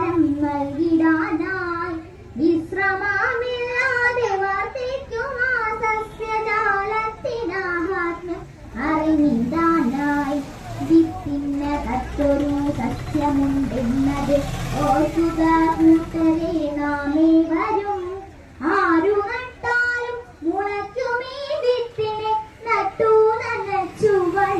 നൽകിടാനായി വിശ്രമമില്ലാതെ വർദ്ധിക്കുമാ സസ്യജാലത്തിനാഹാത്മ്യം അറിഞ്ഞിടാനായി. വിത്തിനകത്തൊരു സസ്യമുണ്ടെന്നത് ഓർക്കുക കൂട്ടരെ നാമേ വരും. ആരു നട്ടാലും മുളയ്ക്കുമീ വിത്തിനെ നട്ടു നനച്ചു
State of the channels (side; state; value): both; identical; correlation 1.00